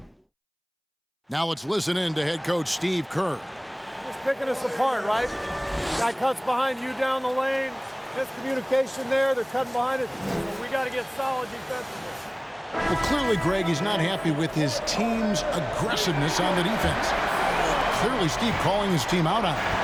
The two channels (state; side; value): identical; both; correlation 1.00